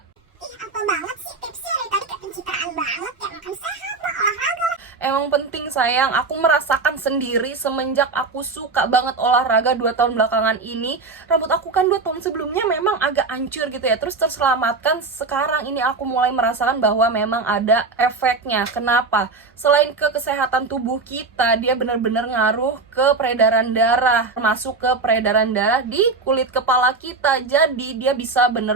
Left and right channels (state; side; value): quieter; left; 4.0 dB